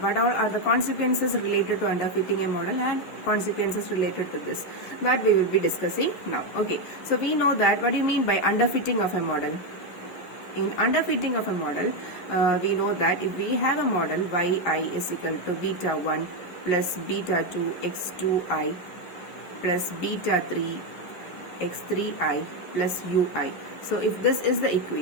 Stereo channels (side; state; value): right; late; 11 ms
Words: all are the consequences related to underfitting a model and consequences related to this, that we will be discussing now. Okay, so we know that what do you mean by underfitting of a model? In underfitting of a model, we know that if we have a model yi is equal to beta 1 plus beta 2 x2i plus beta 3 x3i plus ui. So if this is the